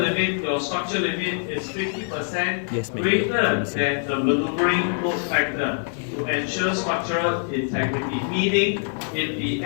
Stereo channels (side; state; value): right; silent; 63 dB below the other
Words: your structure limit, is 50% greater than the maneuvering load factor to ensure structural integrity. Meaning, if the